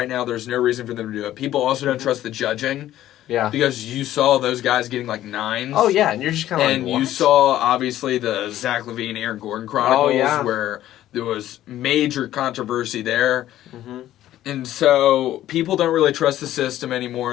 now there's no reason for them to do it. People also don't trust the judging. Yeah. Because you saw those guys getting like 9s. Oh, yeah, and you're just kind of like, And what? you saw, obviously, the Zach LaVine, Aaron Gordon Chronicles where there was major controversy there. Mm-hmm. And so people don't really trust the system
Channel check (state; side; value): quieter; right; 13.3 dB